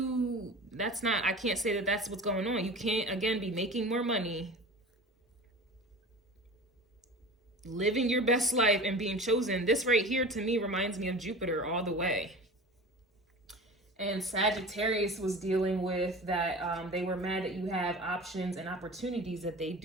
can't say that that's what's going on. You can't, again, be making more money, living your best life, and being chosen. This right here to me reminds me of Jupiter all the way. And Sagittarius was dealing with that. They were mad that you have options and opportunities that they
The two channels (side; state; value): both; normal; correlation 0.36